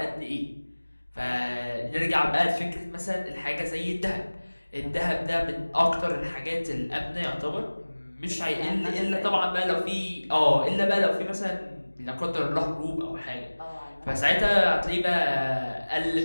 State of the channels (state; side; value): inverted; both; correlation -1.00